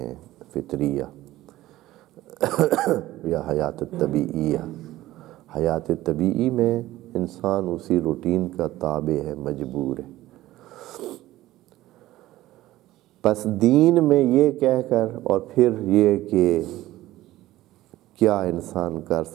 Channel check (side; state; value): left; quieter; 15.9 dB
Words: فطریہ یا حیات طبیعیہ۔ حیات طبیعی میں انسان اسی روٹین کا تابع ہے، مجبور ہے۔ پس دین میں یہ کہہ کر اور پھر یہ کہ کیا انسان کر